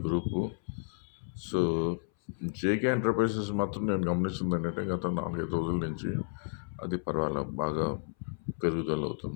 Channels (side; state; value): right; silent; 56 dB below the other